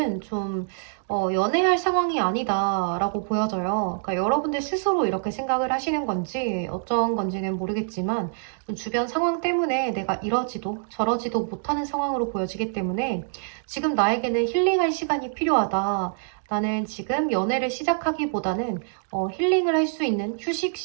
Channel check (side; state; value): left; silent; digital silence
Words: 좀 연애할 상황이 아니다라고 보여져요. 그러니까 여러분들 스스로 이렇게 생각을 하시는 건지 어쩐 건지는 모르겠지만 좀 주변 상황 때문에 내가 이러지도 저러지도 못하는 상황으로 보여지기 때문에 지금 나에게는 힐링할 시간이 필요하다. 나는 지금 연애를 시작하기보다는 힐링을 할 수 있는 휴식